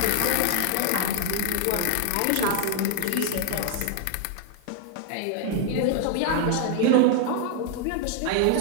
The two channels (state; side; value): different; both; correlation 0.00